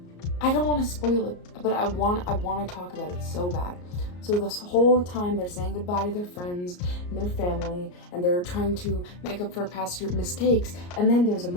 I don't want to spoil it, but I want to talk about it so bad. So this whole time they're saying goodbye to their friends and their family, and they're trying to make up for past mistakes. And then there's a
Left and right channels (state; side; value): late; right; 34 ms